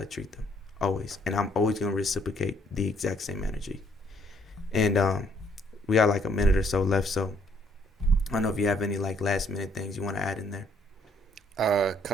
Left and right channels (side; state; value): both; normal; correlation 0.67